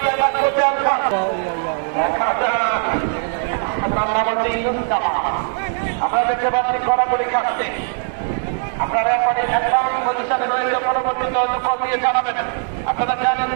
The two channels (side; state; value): left; silent; 59 dB below the other